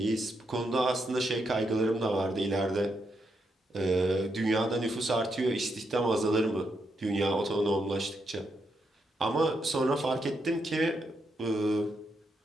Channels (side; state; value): both; normal; correlation 0.81